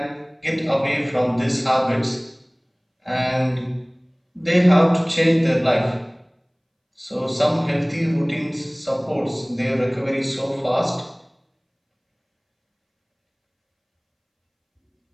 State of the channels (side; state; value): both; identical; correlation 1.00